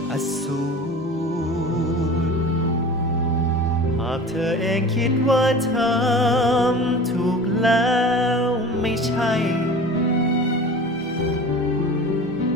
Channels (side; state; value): both; normal; correlation 0.38